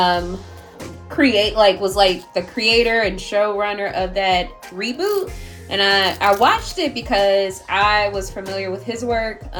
the creator and showrunner of that reboot, and I watched it because I was familiar with his work.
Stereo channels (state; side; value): identical; both; correlation 1.00